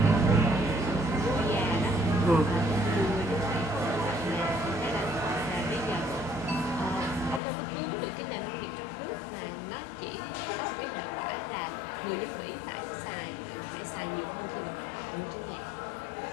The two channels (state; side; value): drops out; right; at 7.4 s